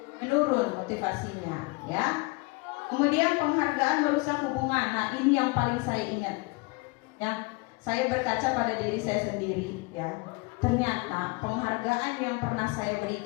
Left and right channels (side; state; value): right; quieter; 26.4 dB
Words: menurun motivasinya ya. Kemudian penghargaan merusak hubungan. Nah, ini yang paling saya ingat ya. Saya berkaca pada diri saya sendiri ya. Ternyata penghargaan yang pernah saya